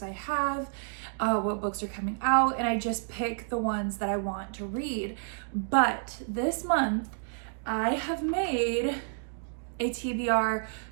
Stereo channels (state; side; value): silent; left; digital silence